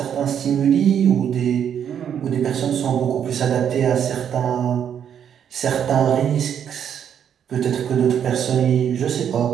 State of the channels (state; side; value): quieter; left; 8.7 dB